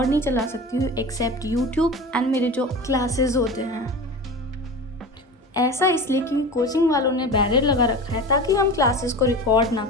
नहीं चला सकती हूँ एक्सेप्ट यूट्यूब एंड मेरे जो क्लासेस होते हैं। ऐसा इसलिए क्योंकि कोचिंग वालों ने बैरियर लगा रखा है ताकि हम क्लासेस को रिकॉर्ड ना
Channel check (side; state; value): both; normal; correlation 0.32